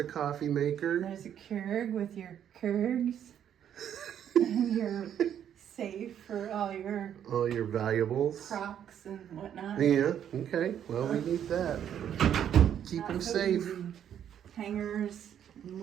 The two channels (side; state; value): left; quieter; 9.6 dB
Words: coffee maker. There's a Keurig with your Keurigs and your safe for all your valuables. Crocs and whatnot. Yeah. Okay. Well, we need that. Keep them safe. Easy. Hangers and